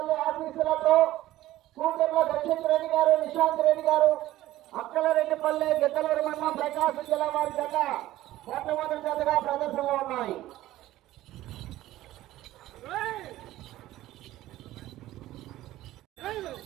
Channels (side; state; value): left; quieter; 15.3 dB